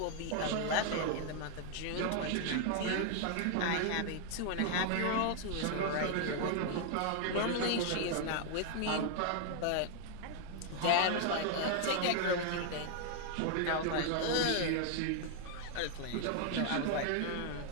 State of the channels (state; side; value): different; both; correlation 0.00